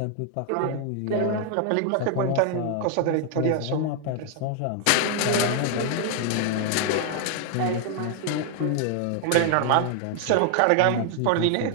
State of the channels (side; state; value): both; different; correlation 0.00